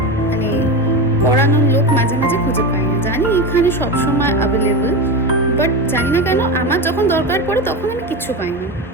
মানে পড়ানোর লোক মাঝে মাঝে খুঁজে পাই না। জানি এখানে সবসময় অ্যাভেলেবল, বাট জানি না কেন আমার যখন দরকার পড়ে তখন আমি কিচ্ছু পাইনি।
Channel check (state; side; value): normal; both; correlation 0.20